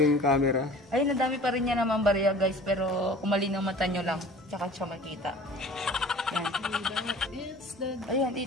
yung camera. Ayun, ang dami pa rin niya naman barya guys, pero kung malinaw mata nyo lang, tsaka siya makita. Yan. It's the... Ayan,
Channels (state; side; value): normal; both; correlation 0.44